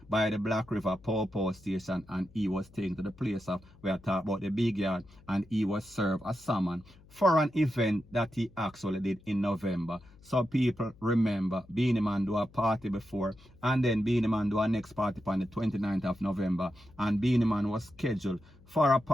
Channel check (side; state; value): left; noise; hum, 25 dB below the sound